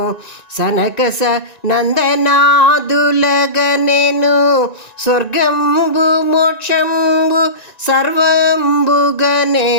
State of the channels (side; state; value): right; late; 1.9 ms